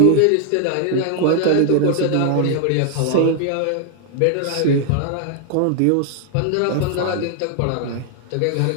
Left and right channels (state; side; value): different; both; correlation 0.00